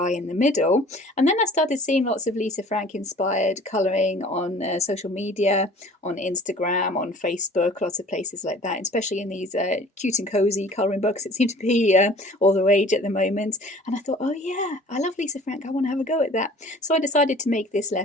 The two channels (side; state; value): both; normal; correlation 0.49